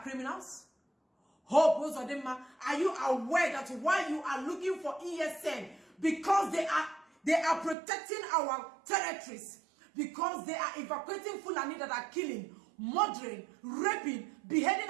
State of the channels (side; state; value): left; drops out; at 7.8 s